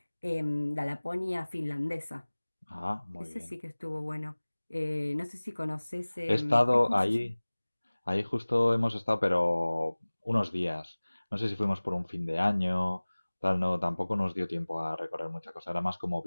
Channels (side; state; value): both; inverted; correlation -1.00